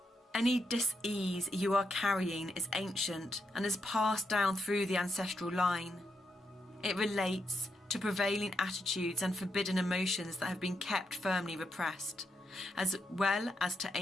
Any dis-ease you are carrying is ancient and is passed down through the ancestral line. It relates to prevailing attitudes and forbidden emotions that have been kept firmly repressed, as well as to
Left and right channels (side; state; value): both; normal; correlation 0.83